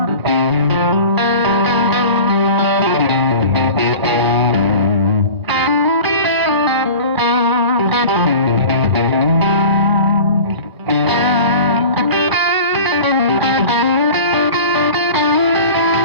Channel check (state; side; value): late; left; 2.4 ms